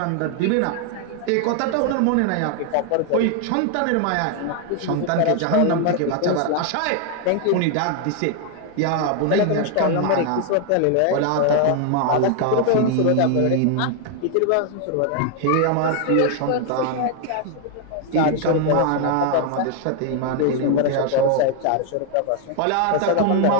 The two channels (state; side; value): different; both; correlation 0.00